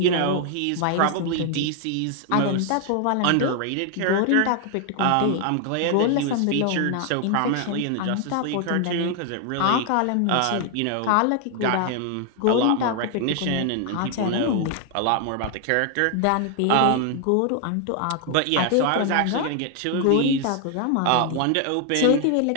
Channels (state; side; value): different; both; correlation 0.00